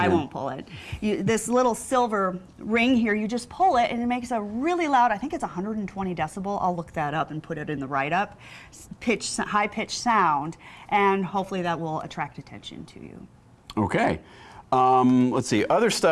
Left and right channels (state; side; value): identical; both; correlation 1.00